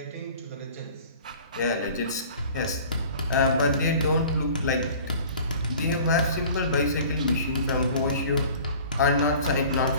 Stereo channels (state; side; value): inverted; both; correlation -0.45